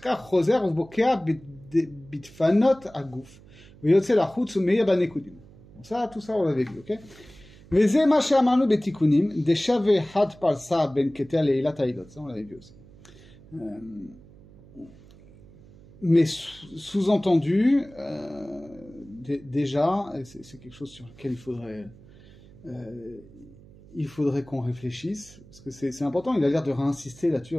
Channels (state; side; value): noise; right; hum, 23 dB below the sound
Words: חוזר ובוקע בדפנות הגוף ויוצא לחוץ ומאיר בנקודים. tout ça on l'avait vu, ok? וזה מה שאמרנו בתיקונים, דשווה חד פרסה בין קטע לעילת העילות, ça on l'avait vu aussi. Mais sous-entendu, déjà, c'est quelque chose sur lequel il faudrait qu'on réfléchisse, parce que c'est important, il a l'air de réinsister là-dessus,